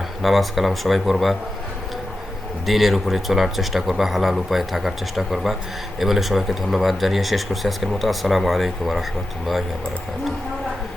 নামাজ কালাম সবাই পড়বা, দিনের উপরে চলার চেষ্টা করবা, হালাল উপায়ে থাকার চেষ্টা করবা। এ বলে সবাইকে ধন্যবাদ জানিয়ে শেষ করছি আজকের মতো। আসসালামু আলাইকুম ওয়া রাহমাতুল্লাহি ওয়া বারাকাতুহু।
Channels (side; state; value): both; normal; correlation 0.91